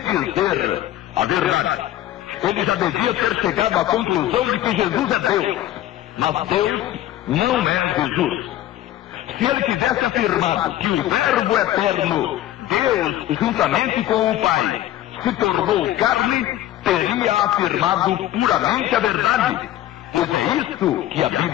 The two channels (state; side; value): quieter; right; 13.7 dB